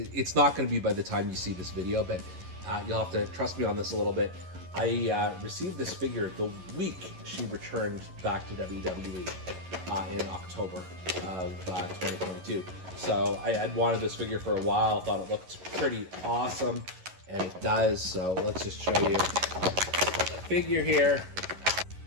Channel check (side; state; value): left; late; 11 ms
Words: not going to be by the time you see this video, but you'll have to trust me on this a little bit. I received this figure the week she returned back to WWE in October of 2022. So I had wanted this figure for a while, thought it looked pretty awesome, and it does. So let's just show you the figure here.